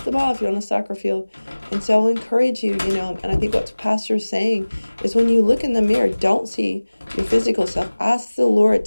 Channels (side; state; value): both; inverted; correlation -1.00